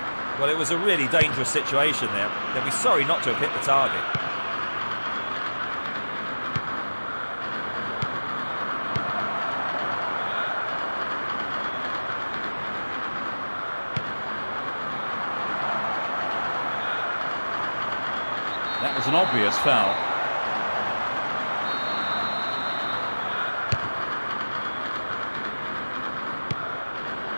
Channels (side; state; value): both; inverted; correlation -1.00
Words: Well, it was a really dangerous situation there. They'll be sorry not to have hit the target. That was an obvious foul.